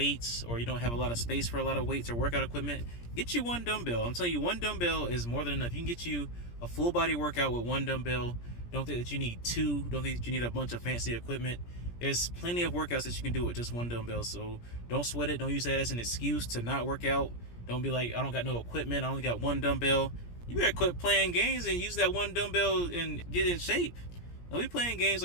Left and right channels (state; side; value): late; right; 17 ms